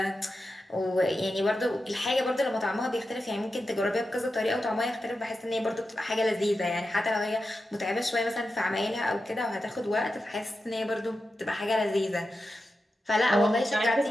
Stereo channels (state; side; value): normal; both; correlation 0.90